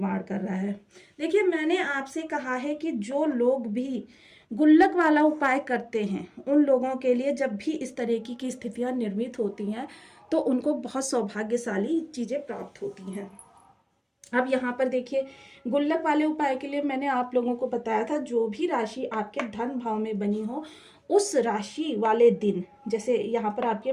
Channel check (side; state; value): both; identical; correlation 1.00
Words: कर रहा है। देखिए, मैंने आपसे कहा है कि जो लोग भी गुल्लक वाला उपाय करते हैं, उन लोगों के लिए जब भी इस तरह की स्थितियां निर्मित होती हैं तो उनको बहुत सौभाग्यशाली चीज़ें प्राप्त होती हैं। अब यहाँ पर देखिए, गुल्लक वाले उपाय के लिए मैंने आप लोगों को बताया था, जो भी राशि आपके धन भाव में बनी हो उस राशि वाले दिन, जैसे यहाँ पर आपके